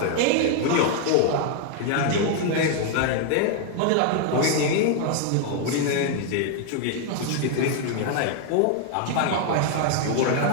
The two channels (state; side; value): different; both; correlation 0.00